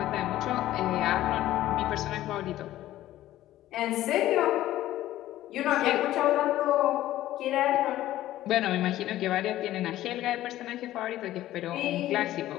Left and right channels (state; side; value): quieter; right; 14.3 dB